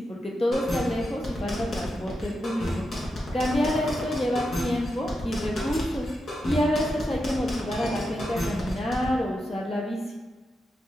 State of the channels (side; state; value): both; normal; correlation 0.87